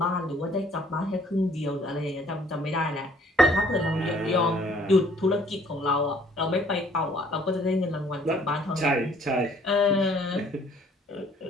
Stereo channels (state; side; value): normal; both; correlation 0.59